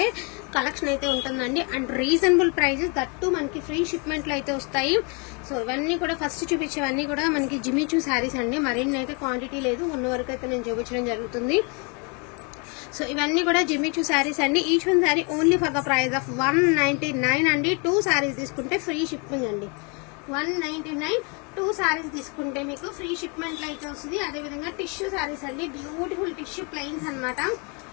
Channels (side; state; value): right; quieter; 33.5 dB